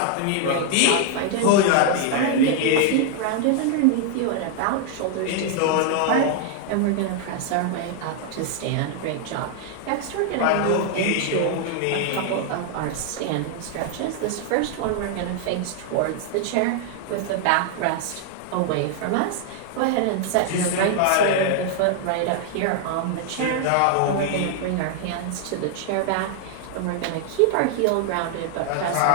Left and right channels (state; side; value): different; both; correlation 0.00